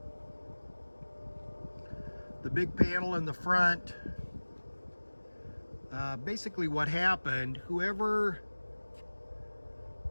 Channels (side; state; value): both; inverted; correlation -1.00